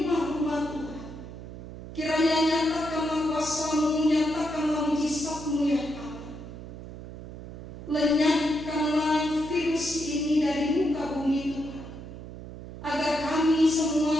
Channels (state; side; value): noise; right; hum, 12 dB below the sound